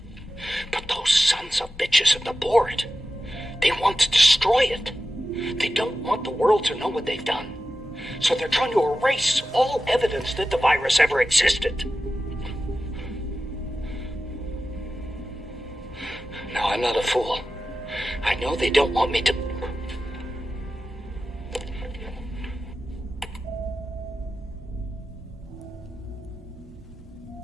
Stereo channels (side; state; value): both; normal; correlation 0.93